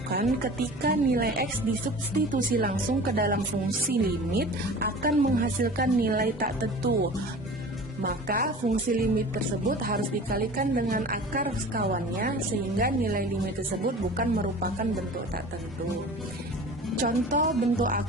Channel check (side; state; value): both; normal; correlation 0.39